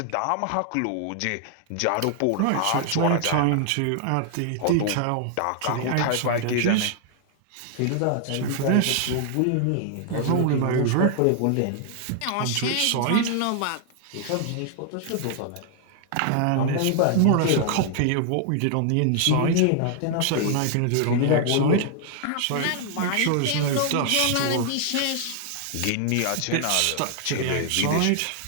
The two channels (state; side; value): different; both; correlation 0.00